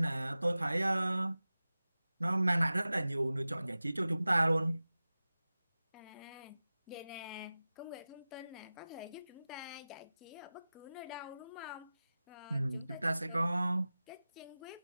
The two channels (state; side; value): inverted; both; correlation -0.96